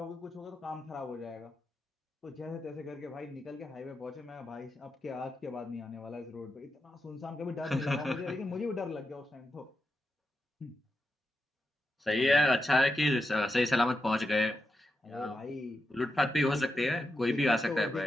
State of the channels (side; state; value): both; normal; correlation 0.87